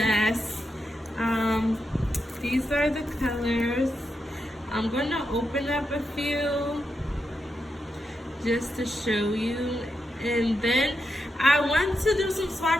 These are the colors. I'm gonna open up a few just to show you, and then I want to do some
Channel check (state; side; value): normal; both; correlation 0.85